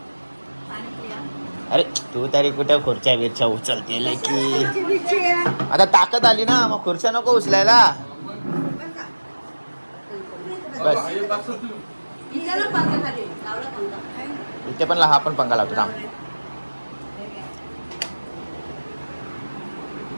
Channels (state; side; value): inverted; both; correlation -1.00